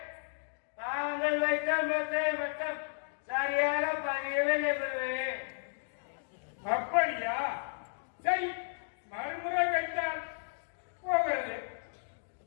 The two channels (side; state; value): right; silent; digital silence